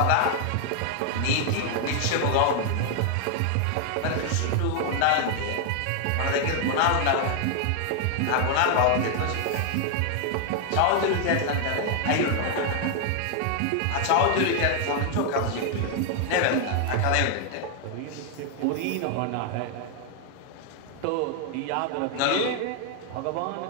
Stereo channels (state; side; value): different; both; correlation 0.00